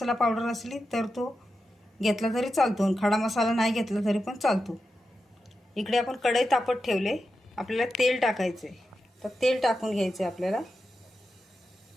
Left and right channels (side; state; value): both; normal; correlation 0.89